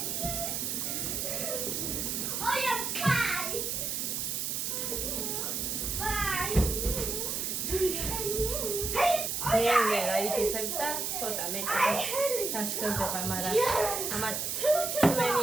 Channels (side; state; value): right; noise; hiss, 1 dB below the sound